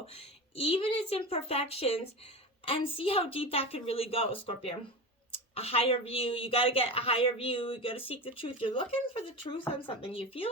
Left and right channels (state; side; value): normal; both; correlation 0.26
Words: even its imperfections, and see how deep that could really go, Scorpio. A higher view. You got to get a higher view. You got to seek the truth. You're looking for the truth on something. You feel